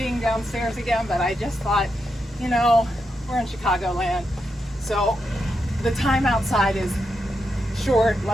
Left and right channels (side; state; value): both; normal; correlation 0.85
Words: downstairs again, but I just thought, you know, we're in Chicagoland, so the time outside is short.